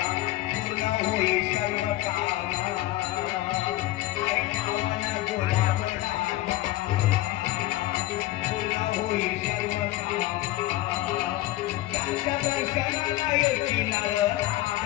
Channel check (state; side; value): quieter; right; 16.5 dB